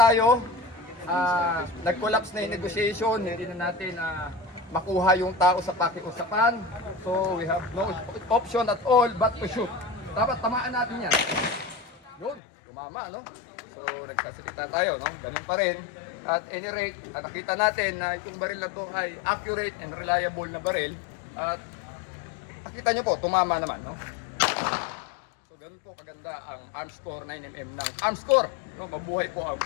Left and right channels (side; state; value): right; drops out; at 12.4 s